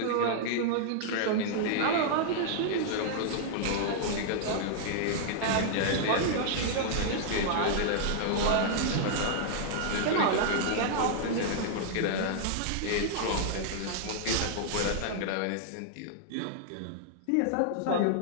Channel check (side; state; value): both; different; correlation -0.01